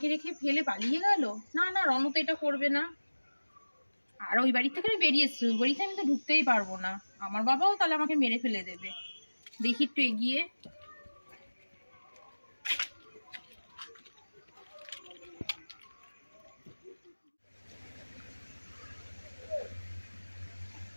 রেখে ফেলে পালিয়ে গেল? না না, রণ তো এটা করবে না। আর ওই বাড়ি থেকে আমি বেরিয়ে এসছি, ওই বাড়িতে আমি তো ঢুকতেই পারবো না। আমার বাবাও তাহলে আমাকে মেরে ফেলে দেবে। দেখি একটু এগিয়ে।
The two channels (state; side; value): inverted; both; correlation -1.00